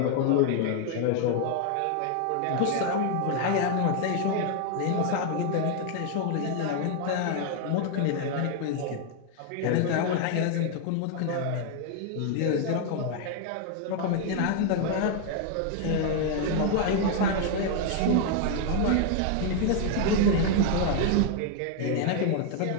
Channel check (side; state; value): both; different; correlation 0.00